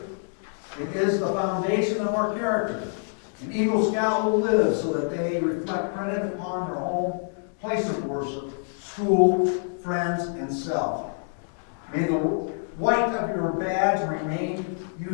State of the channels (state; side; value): silent; right; 61 dB below the other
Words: It is the foundation of our character. An Eagle Scout will live so that they reflect credit upon their home, place of worship, school, friends, and self. May the white of your badge remain you